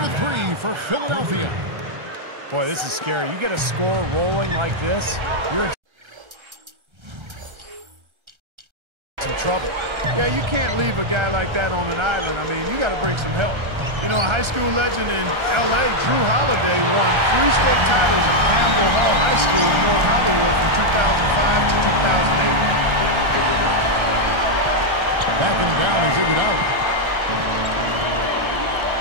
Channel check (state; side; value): late; left; 1.3 ms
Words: 3 for Philadelphia. Boy, this is scary. You get a score rolling like this, you're in some trouble. Yeah, you can't leave a guy like that on an island. I mean, you got to bring some help. You know, a high school legend in L.A., Drew Holiday, won 3 state titles at Campbell Hall High School in North Hollywood from 2005 to 2008. Backing him down is Iguodala.